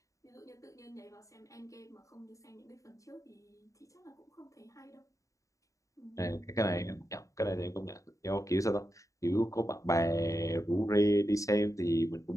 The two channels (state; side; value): late; right; 0.16 ms